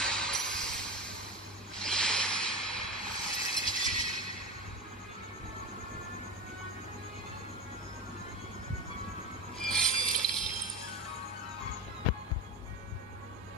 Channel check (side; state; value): both; normal; correlation 0.24